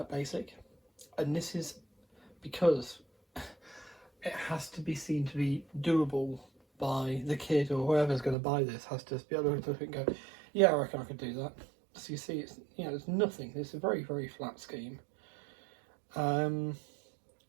basic. And this is because it has to be seen to be doable by the kid or whoever's going to buy this. Has to be able to look at it and go, yeah, I reckon I could do that. So you see, it's it's nothing. It's a very, very flat scheme.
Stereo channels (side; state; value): left; drops out; at 8.3 s